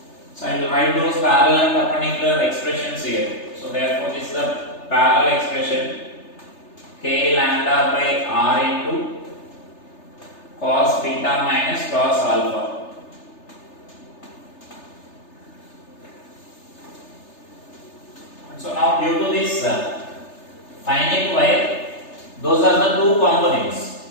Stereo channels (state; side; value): late; right; 3.3 ms